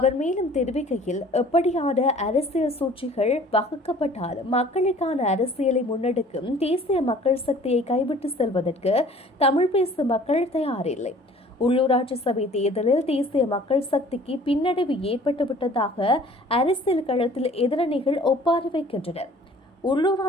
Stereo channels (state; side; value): normal; both; correlation 0.51